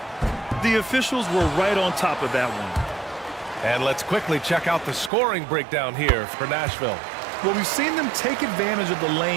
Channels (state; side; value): drops out; left; at 5.1 s